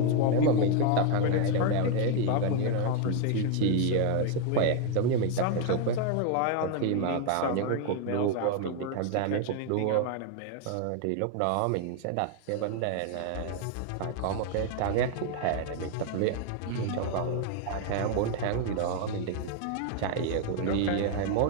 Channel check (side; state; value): both; different; correlation 0.00